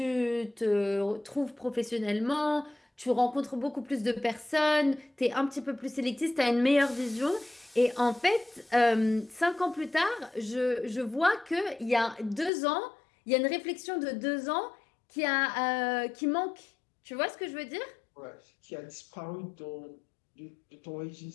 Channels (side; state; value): right; drops out; at 12.5 s